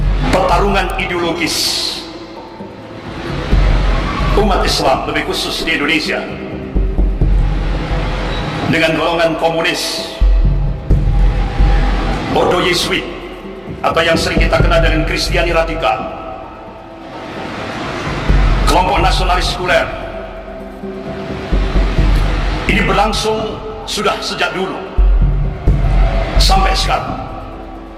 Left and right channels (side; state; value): both; identical; correlation 1.00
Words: pertarungan ideologis umat Islam lebih khusus di Indonesia dengan golongan komunis, Ordo Yesuit, atau yang sering kita kenal dengan Kristiani radikal, kelompok nasionalis sekuler, ini berlangsung sudah sejak dulu sampai sekarang.